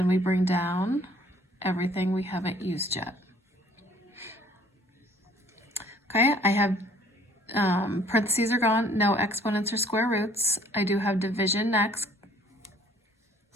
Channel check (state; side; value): normal; both; correlation 0.57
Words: we bring down everything we haven't used yet. Okay, I have parentheses are gone, no exponents or square roots. I do have division next.